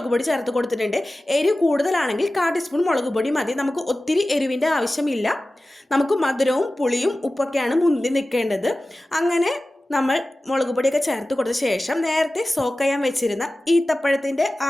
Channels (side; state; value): both; normal; correlation 0.95